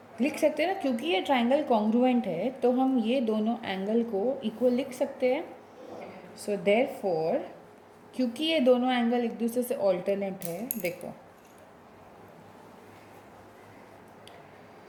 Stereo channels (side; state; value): both; identical; correlation 1.00